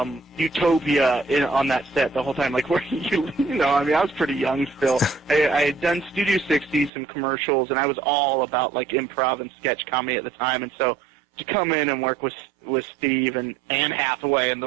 utopia on that set the whole time, like where you know, I mean, I was pretty young still. I had done Studio 60, some commercials, and I was all about like improv and sketch comedy at the time, and so to come in and work with Steve and Anne Hathaway and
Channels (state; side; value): drops out; left; at 6.9 s